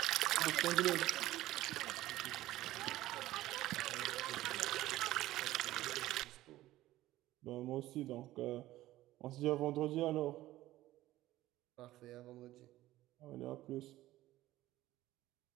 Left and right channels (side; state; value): left; quieter; 15.7 dB